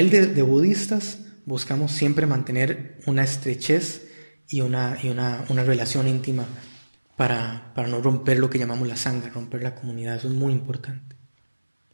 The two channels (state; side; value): inverted; both; correlation -1.00